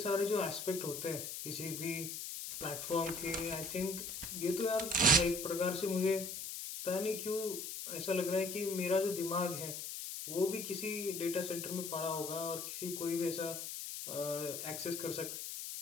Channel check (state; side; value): noise; left; hiss, 6 dB below the sound